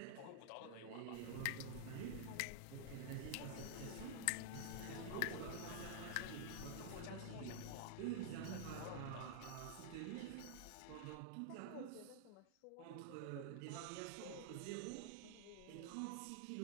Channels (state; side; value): different; both; correlation -0.01